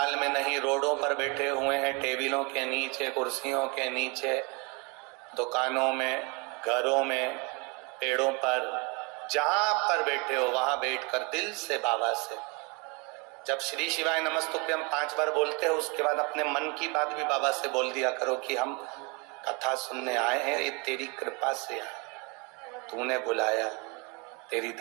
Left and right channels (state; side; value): quieter; left; 29.9 dB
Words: में नहीं रोडों पर बैठे हुए हैं, टेबलों के नीचे, कुर्सियों के नीचे, दुकानों में, घरों में, पेड़ों पर, जहां पर बैठे हो वहां बैठकर दिल से बाबा से जब श्री शिवाय नमस्तुभ्यम 5 बार बोलते हो, उसके बाद अपने मन की बात भी बाबा से बोल दिया करो कि हम कथा सुनने आए हैं, ये तेरी कृपा से आए, तूने बुलाया, तेरी